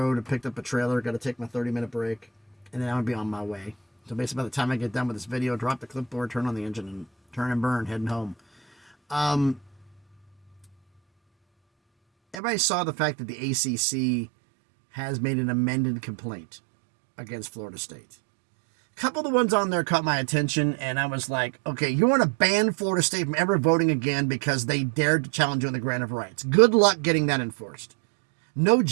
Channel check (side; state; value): left; drops out; at 12.4 s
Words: and picked up a trailer. Got to take my 30-minute break, and then I'm going to be on my way. So basically by the time I get done with this video, drop the clipboard, turn on the engine, and turn and burn, heading home. Everybody saw the fact that the ACC has made an amended complaint against Florida State. A couple of the ones on there caught my attention, and I was like, okay, you want to ban Florida State from ever voting again because they dared to challenge you on the grant of rights. Good luck getting that enforced. No